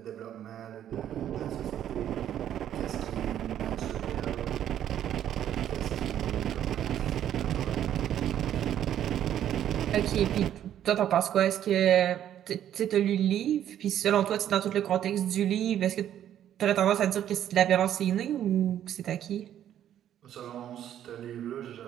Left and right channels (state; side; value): quieter; left; 10.8 dB